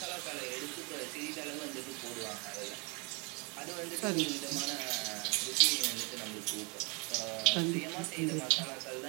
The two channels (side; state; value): left; quieter; 31.8 dB